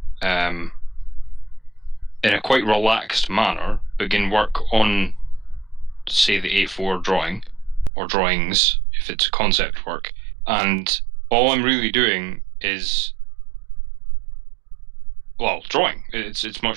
in a quite relaxed manner, begin work on, say, the A4 drawing, or drawings if it's concept work, and all I'm really doing is, well, drawing. It's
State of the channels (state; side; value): drops out; left; at 7.9 s